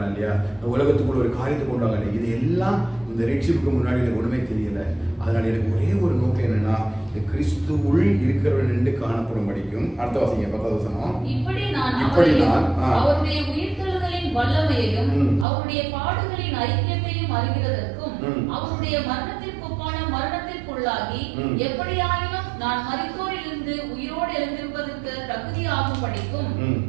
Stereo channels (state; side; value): drops out; left; at 15.5 s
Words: இல்லையா, இந்த உலகத்துக்குள்ள ஒரு காரியத்தை கொண்டு வாங்க, இது எல்லாம் இந்த ரட்சிப்புக்கு முன்னாடி எனக்கு ஒண்ணுமே தெரியல. அதனால எனக்கு ஒரே ஒரு நோக்கம் என்னன்னா, இந்த கிறிஸ்து உள் இருக்கிறவன் என்று காணப்படும் படிக்கும். அடுத்த வாசிங்க 10வது வசனம். இப்படி நான் அவருடைய உயிர்த்தெழுதலின் வல்லமையையும் அவருடைய பாடுகளின் ஐக்கியத்தையும் அறிகிறதற்கும் அவருடைய மரணத்திற்கு ஒப்பான மரணத்திற்குள்ளாகி எப்படியாயினும் நான் மரித்தோரிலிருந்து உயிரோடு எழுந்திருப்பதற்கு தகுதியாகும் படிக்கும்